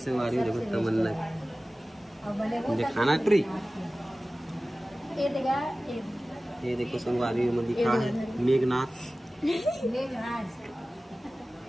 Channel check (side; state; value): both; normal; correlation 0.97